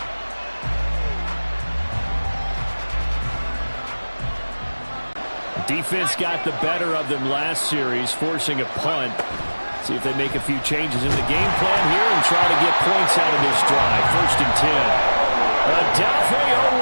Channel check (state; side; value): inverted; both; correlation -1.00